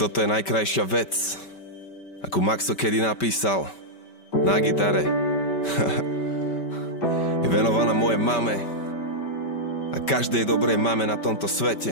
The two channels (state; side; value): late; right; 5.2 ms